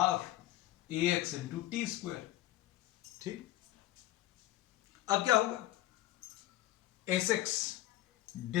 a x into t square, ठीक। अब क्या होगा, s x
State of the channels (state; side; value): quieter; right; 15.4 dB